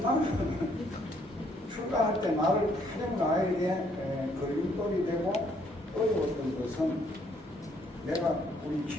나는 출가할 때 나를 가장 나에게 걸림돌이 되고 어려웠던 것은 내가 우리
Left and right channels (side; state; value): both; normal; correlation 0.68